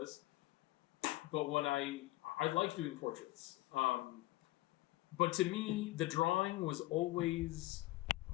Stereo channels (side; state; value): right; quieter; 18.0 dB